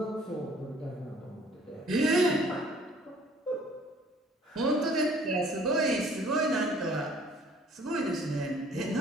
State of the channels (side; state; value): both; normal; correlation 0.55